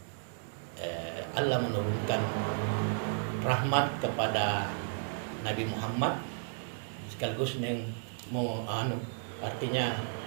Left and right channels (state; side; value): silent; left; digital silence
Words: Allah menurunkan rahmat kepada Nabi Muhammad sekaligus artinya